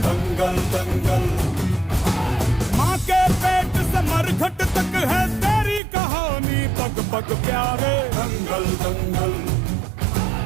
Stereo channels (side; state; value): left; drops out; at 5.8 s